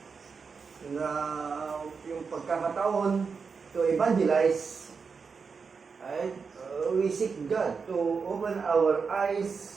na yung pagkakataon to evangelize, right? We seek God to open our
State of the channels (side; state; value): left; quieter; 5.3 dB